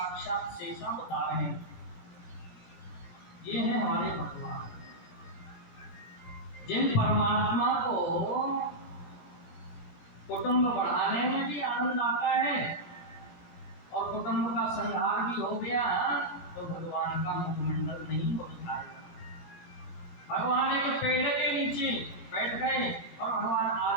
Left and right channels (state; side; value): late; right; 17 ms